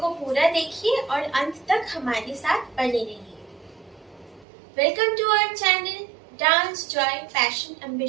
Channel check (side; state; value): left; drops out; at 4.5 s